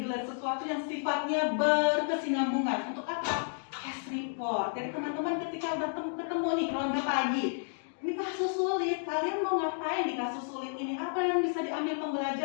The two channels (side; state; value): right; silent; digital silence